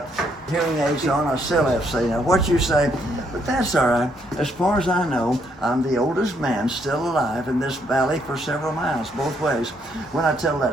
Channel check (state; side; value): normal; both; correlation 0.72